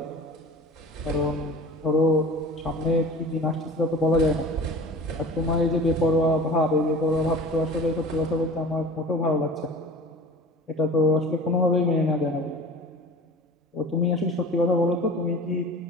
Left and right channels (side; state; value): both; normal; correlation 0.39